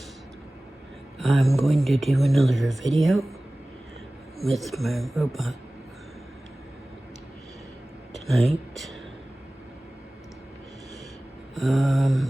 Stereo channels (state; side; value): normal; both; correlation 0.98